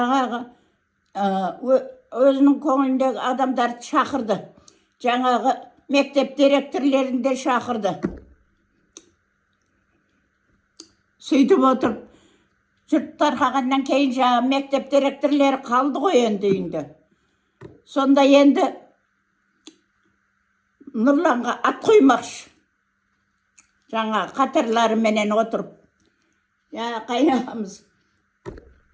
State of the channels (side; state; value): both; identical; correlation 1.00